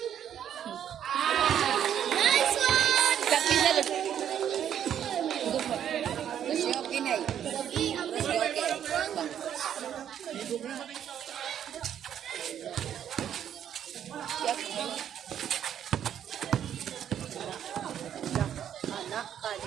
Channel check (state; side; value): quieter; left; 9.6 dB